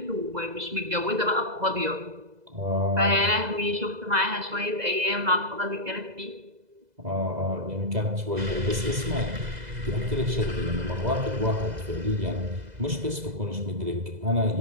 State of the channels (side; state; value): left; late; 2.0 ms